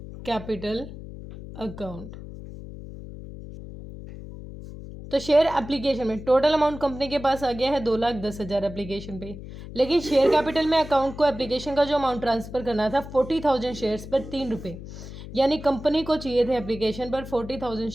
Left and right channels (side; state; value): left; noise; hum, 12 dB below the sound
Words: capital account. तो शेयर एप्लीकेशन में टोटल अमाउंट कंपनी के पास आ गया है 2,10,000 एप्लीकेशन पे, लेकिन शेयर कैपिटल में अकाउंट को एप्लीकेशन का जो अमाउंट ट्रांसफ़र करना था 40,000 शेयर्स पर 3 रुपये, यानी कंपनी को चाहिए थे एप्लीकेशन पर 40,000